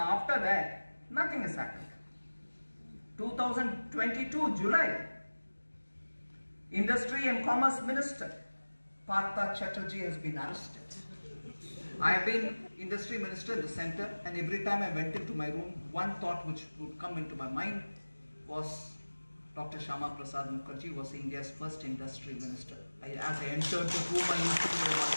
that, nothing has happened. 2022 July, Industry and Commerce Minister Partha Chatterjee has been arrested. I have been Industry Minister in the center, and every time I went into my room, one thought which would come into my mind was Dr. Shama Prasad Mukherjee was India's first Industry Minister. As I entered the room, I used to know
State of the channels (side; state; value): both; inverted; correlation -1.00